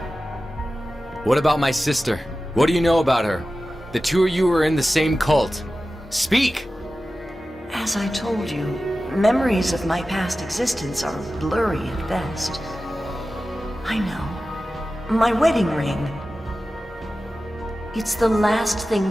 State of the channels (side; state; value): both; normal; correlation 0.95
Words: What about my sister? What do you know about her? The two of you were in the same cult. Speak! As I told you, memories of my past existence are blurry at best. I know. My wedding ring. It's the last thing